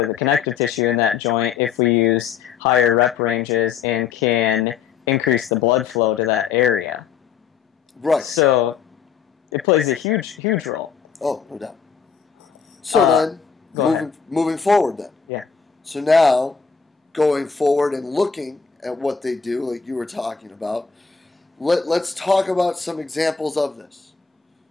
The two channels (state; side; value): quieter; right; 6.5 dB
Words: the connective tissue in that joint if we use higher rep ranges and can increase the blood flow to that area. Right. So it plays a huge role. Oh, no doubt. So then, moving forward then. Yeah. So now, going forward and looking at what they do, like you were talking about, let's talk about some examples of this.